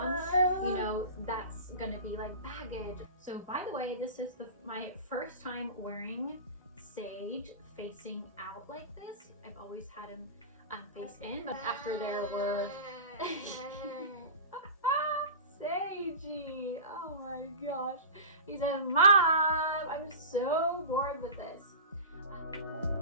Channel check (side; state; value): both; inverted; correlation -0.32